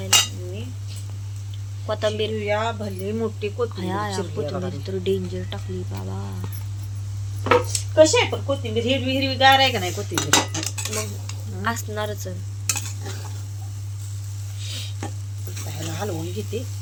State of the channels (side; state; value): both; identical; correlation 1.00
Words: मी कोथिंबीर चिरूया भले मोठी कोथिंबीर तर डेंजर टाकली बाबा कशी आहे पण कोथिंबीर हिरवी हिरवी गार आहे का नाही कोथिंबीर मग असणारच ह्याला हलवून घेते